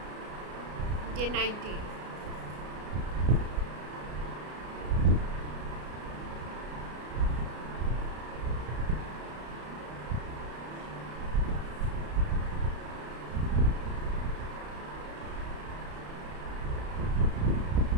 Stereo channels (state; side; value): late; left; 33 ms